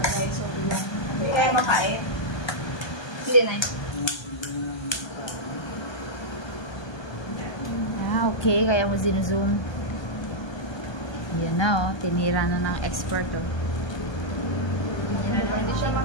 guys. So, piga. Hindi kaya makain. Hindi na Okay. Kaya mo zoom. Yan na tinira na ng expert Hindi siya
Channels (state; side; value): late; right; 1.2 ms